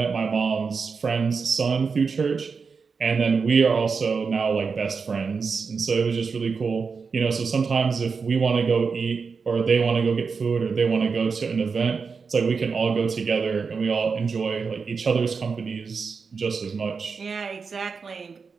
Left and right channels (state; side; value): quieter; left; 5.2 dB